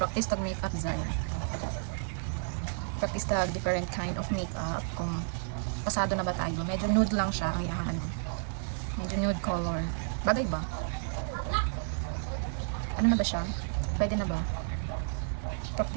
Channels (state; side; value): silent; left; 56 dB below the other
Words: tag makeup, Zoy. Practice tag different kind of makeup. Kung pasado na ba tayo. Medyo nude lang siya ang iyang ano. Medyo nude color. Bagay ba? Ano na ba siya? Pwede na ba?